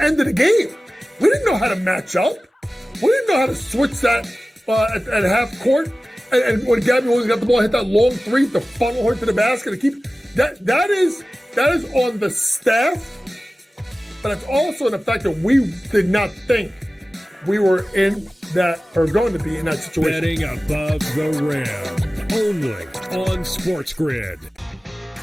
end of the game. We didn't know how to match up. We didn't know how to switch that at half court. And when Gabby Williams got the ball, hit that long three to funnel her to the basket to keep that is on the staff, but it's also in the fact that we did not think we were in that or going to be in that situation. Betting above the rim, only on SportsGrid.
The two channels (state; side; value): normal; both; correlation 0.96